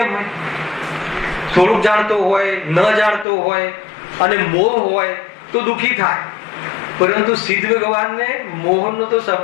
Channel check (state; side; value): drops out; right; at 3.2 s